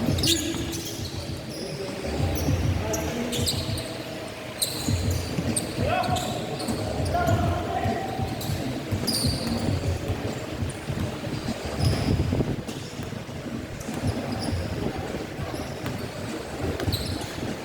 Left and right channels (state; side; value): identical; both; correlation 1.00